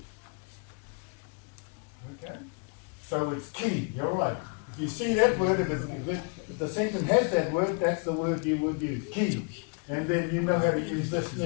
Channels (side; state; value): right; quieter; 36.5 dB